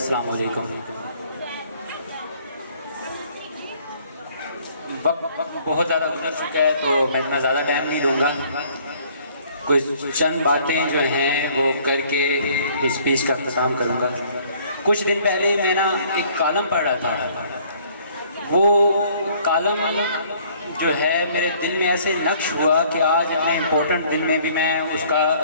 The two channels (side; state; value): both; inverted; correlation -0.59